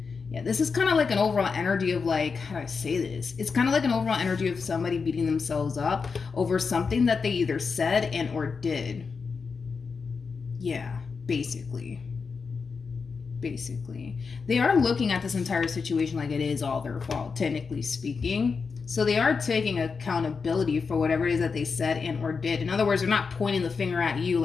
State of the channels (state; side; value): quieter; right; 5.2 dB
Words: Yeah, this is kind of like an overall energy of, like, how do I say this? It's kind of like an overall energy of somebody beating themselves up over something that they either said and or did. Yeah, basically. They are looking at this entire situation like it is all their fault, technically speaking. So they are taking accountability for whatever it is that they said and or did. In other words, they're not pointing the finger at you